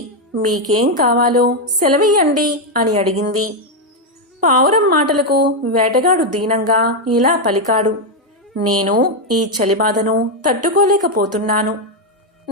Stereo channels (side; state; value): both; normal; correlation 0.03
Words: మీకేం కావాలో సెలవియ్యండి అని అడిగింది. పావురం మాటలకు వేటగాడు దీనంగా ఇలా పలికాడు, నేను ఈ చలిబాధను తట్టుకోలేకపోతున్నాను.